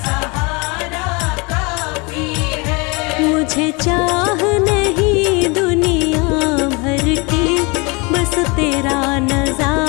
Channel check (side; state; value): right; quieter; 28.4 dB